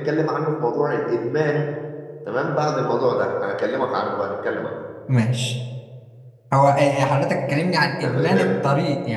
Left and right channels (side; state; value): both; identical; correlation 1.00